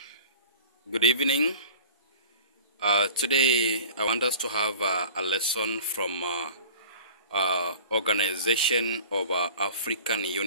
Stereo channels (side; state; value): both; inverted; correlation -0.42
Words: good evening. Today I want us to have a lesson from Organization of African